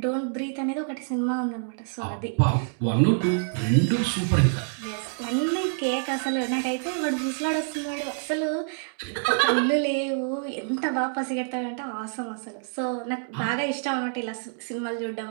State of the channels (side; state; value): left; silent; digital silence